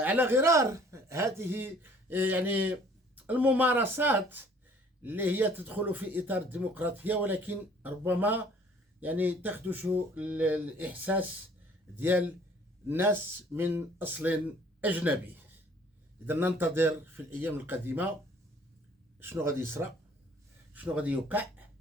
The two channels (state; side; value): normal; both; correlation 0.56